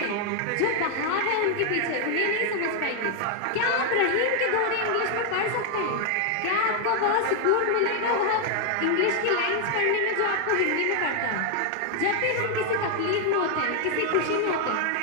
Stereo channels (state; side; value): different; both; correlation 0.00